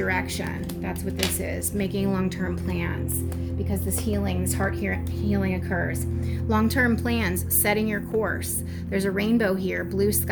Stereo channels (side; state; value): both; identical; correlation 1.00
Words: That's what this is, making long-term plans, because this healing, this heart healing occurs. Long-term plans, setting your course. There's a rainbow here, blue